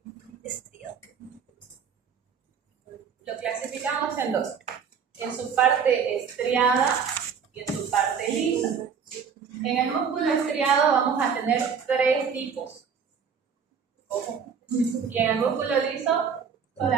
Lo clasificamos en 2. En su parte estriada y en su parte lisa. En el músculo estriado vamos a tener 3 tipos. Ojo. Y en el músculo liso,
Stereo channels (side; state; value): left; quieter; 6.7 dB